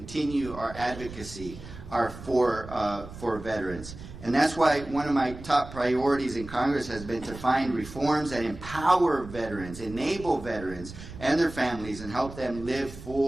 our advocacy for veterans. And that's why one of my top priorities in Congress has been to find reforms that empower veterans, enable veterans and their families, and help them live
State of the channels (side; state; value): right; noise; rumble, 14 dB below the sound